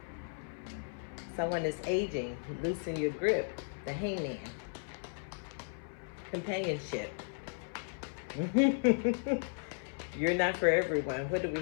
Someone is aging. Loosen your grip. The Hangman. Companionship. You're not for everyone. What do we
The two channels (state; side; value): silent; right; 54 dB below the other